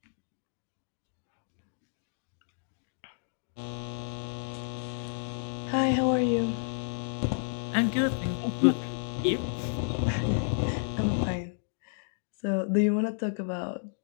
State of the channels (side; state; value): right; silent; digital silence